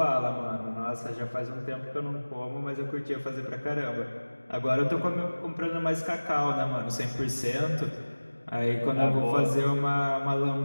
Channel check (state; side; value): inverted; both; correlation -1.00